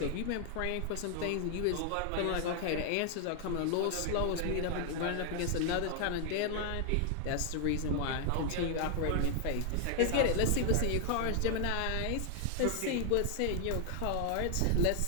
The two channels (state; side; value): different; both; correlation 0.00